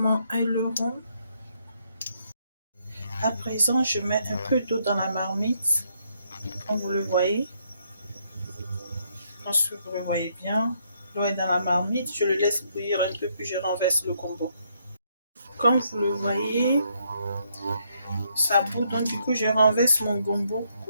aileron. À présent, je mets un peu d'eau dans la marmite, comme vous le voyez. Je pense que vous le voyez bien. L'eau est dans la marmite, je le laisse bouillir un peu, puis je renverse le gombo. Comme vous le voyez, ça bout, donc du coup, je renverse mon gombo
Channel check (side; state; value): both; inverted; correlation -0.73